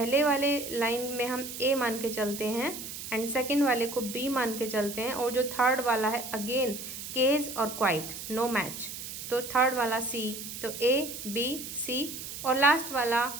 वाले लाइन में हम ए मान के चलते हैं एंड सेकेंड वाले को बी मान के चलते हैं, और जो थर्ड वाला है अगेन केज और क्वाइट, नो मैच, तो थर्ड वाला सी, तो ए बी सी, और लास्ट वाला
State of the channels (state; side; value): noise; right; hiss, 9 dB below the sound